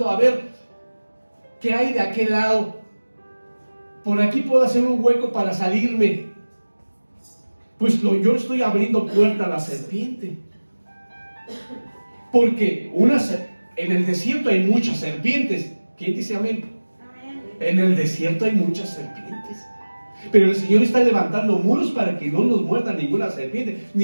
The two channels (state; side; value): inverted; both; correlation -1.00